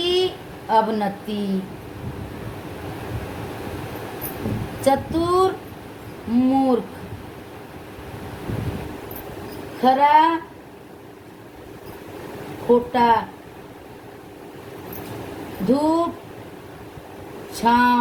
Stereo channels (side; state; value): both; identical; correlation 1.00